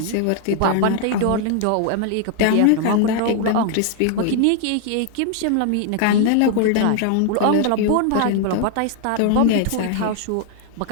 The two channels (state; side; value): different; both; correlation 0.00